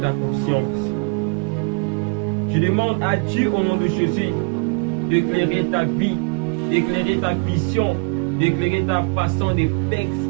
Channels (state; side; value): quieter; left; 34.7 dB